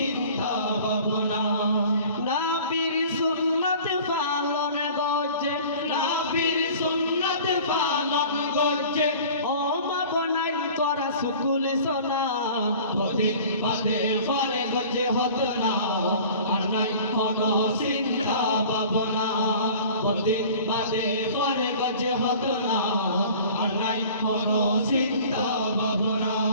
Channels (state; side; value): inverted; both; correlation -0.44